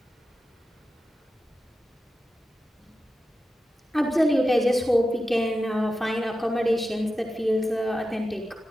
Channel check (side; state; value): both; normal; correlation 0.91